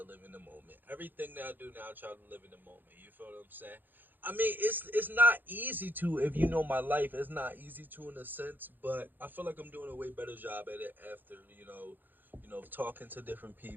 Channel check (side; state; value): left; late; 0.089 ms